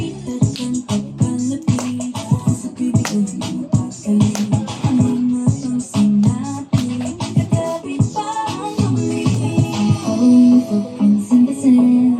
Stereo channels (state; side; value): identical; both; correlation 1.00